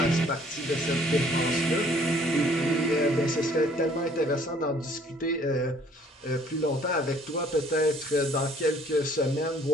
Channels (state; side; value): normal; both; correlation 0.59